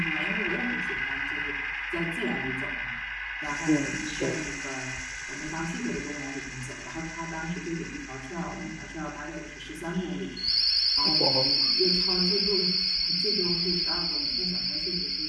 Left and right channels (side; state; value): both; identical; correlation 1.00